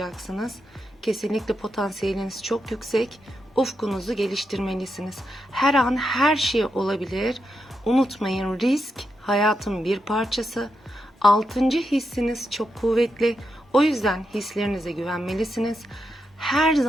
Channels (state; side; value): normal; both; correlation 0.85